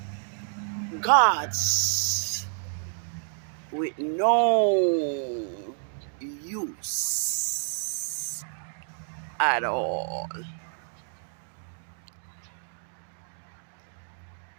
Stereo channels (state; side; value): silent; left; digital silence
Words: gods with no use at all.